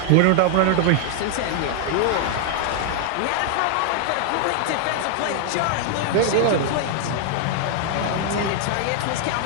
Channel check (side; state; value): both; different; correlation 0.00